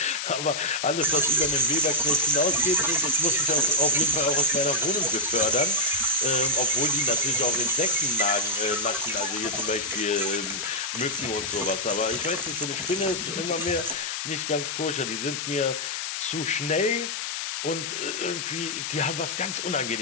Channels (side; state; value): left; noise; hiss, 4 dB below the sound